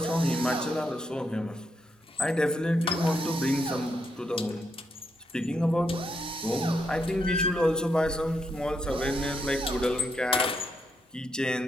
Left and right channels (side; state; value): both; normal; correlation 0.79